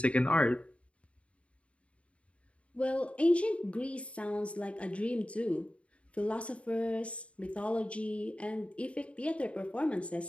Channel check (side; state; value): right; late; 0.062 ms